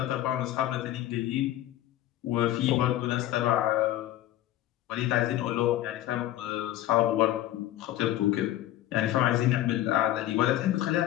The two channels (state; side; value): quieter; right; 13.9 dB